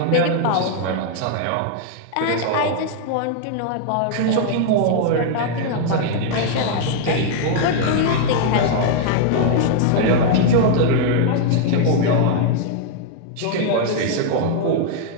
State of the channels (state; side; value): different; both; correlation 0.00